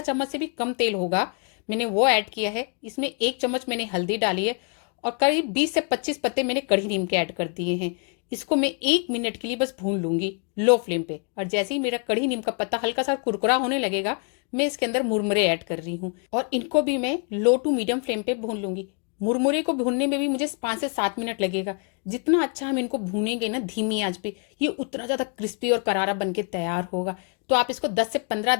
चम्मच से भी कम तेल होगा। मैंने वो ऐड किया है। इसमें 1 चम्मच मैंने हल्दी डाली है और करीब 20 से 25 पत्ते मैंने कढ़ी नीम के ऐड कर दिए हैं। इसको मैं 1 मिनट के लिए बस भून लूंगी लो फ्लेम पे। और जैसे ही मेरा कढ़ी नीम का पत्ता हल्का सा कुरकुरा होने लगेगा, मैं इसके अंदर मुरमुरे ऐड कर रही हूँ और इनको भी मैं लो टू मीडियम फ्लेम पे भून लूंगी। मुरमुरे को भूनने में भी मुझे 5 से 7 मिनट लगेगा। जितना अच्छा हम इनको भूनेंगे ना धीमी आंच पे, ये उतना ज्यादा क्रिस्पी और करारा बन के तैयार होगा। तो आप इसको 10 से 15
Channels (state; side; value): quieter; right; 39.8 dB